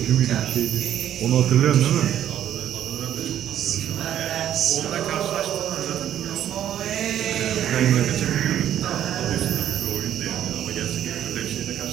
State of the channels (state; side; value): quieter; left; 10.9 dB